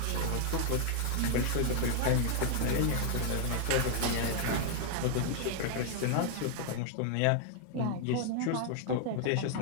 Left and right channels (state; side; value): different; both; correlation 0.00